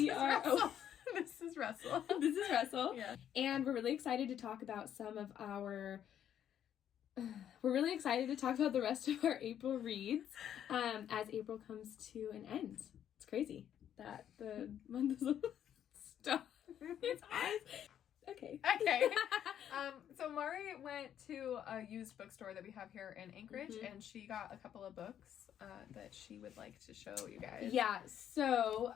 are... Oh, this is Russell. This is Russell. Yeah. And we're really excited to talk about some of our... We're really excited to talk about the rest of our April reads as April comes to an end. It's crazy that the month is stop. It's eyes. Okay. So Mari went to a used bookstore that we have here in Anchorage, and she got a couple of books that she would like to show you guys. Yeah. So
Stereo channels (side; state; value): right; quieter; 10.0 dB